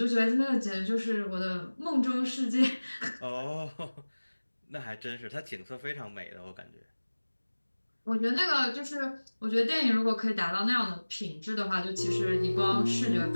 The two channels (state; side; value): inverted; both; correlation -1.00